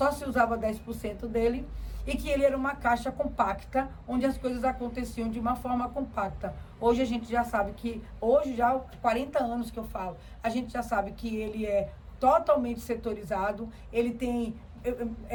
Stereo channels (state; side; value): identical; both; correlation 1.00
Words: se usava 10% dele e que ele era uma caixa compacta, onde as coisas aconteciam de uma forma compacta. Hoje a gente já sabe que, hoje já há 40 anos que eu falo, a gente já sabe que ele é totalmente setorizado, ele tem